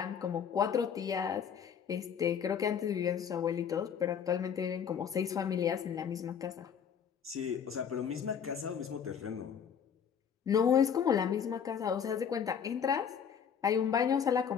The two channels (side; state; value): right; quieter; 7.6 dB